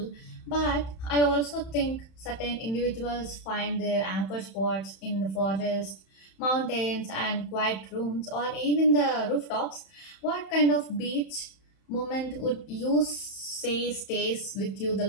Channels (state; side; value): late; right; 31 ms